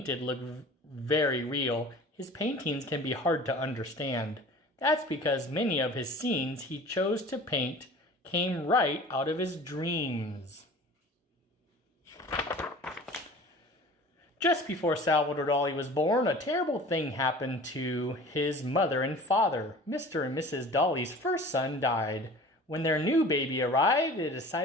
look very real, his paintings can be hard to understand. That's because many of his scenes he chose to paint came right out of his dreams. Just before Salvador Dali was born, a terrible thing happened to his mother and father. Mr. and Mrs. Dali's first son died. When their new baby arrived, they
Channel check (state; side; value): normal; both; correlation 0.42